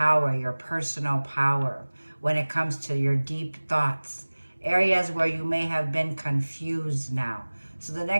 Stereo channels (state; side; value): inverted; both; correlation -1.00